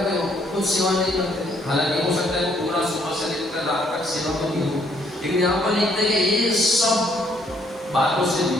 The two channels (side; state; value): both; normal; correlation 0.68